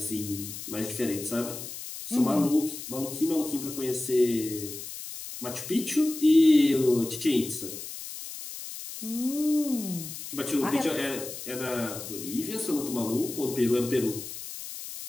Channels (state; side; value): noise; left; hiss, 10 dB below the sound